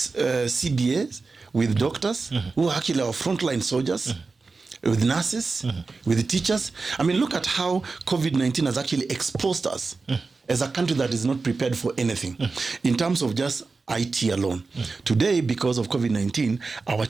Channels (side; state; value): left; quieter; 4.1 dB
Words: CBAs with doctors who are actually our frontline soldiers, with nurses, with the teachers. I mean, look at how COVID-19 has actually exposed us as a country that is not prepared for anything in terms of just IT alone. Today, because of COVID-19, our